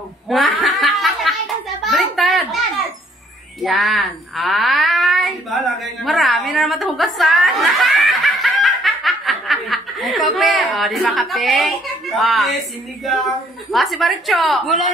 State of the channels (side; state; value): both; normal; correlation 0.63